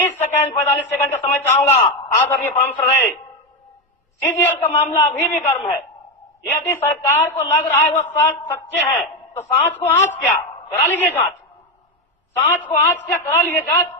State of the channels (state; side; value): normal; both; correlation 0.10